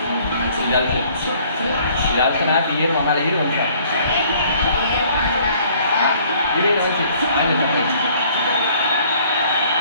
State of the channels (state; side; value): inverted; both; correlation -0.58